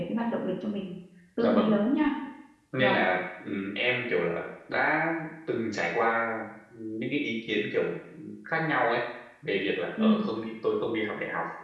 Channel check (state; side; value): identical; both; correlation 1.00